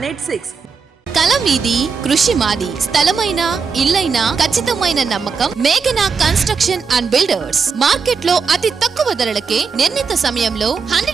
కల మీది, కృషి మాది. స్థలమైన, ఇల్లైనా ఖచ్చితమైన నమ్మకం మేఘనా కన్స్ట్రక్షన్ అండ్ బిల్డర్స్. మార్కెట్ లో అతి తక్కువ ధరలకే నిర్ణీత సమయంలో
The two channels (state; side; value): quieter; left; 5.5 dB